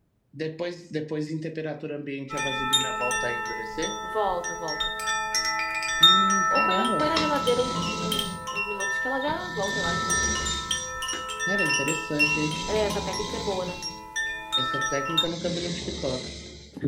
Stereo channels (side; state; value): both; identical; correlation 1.00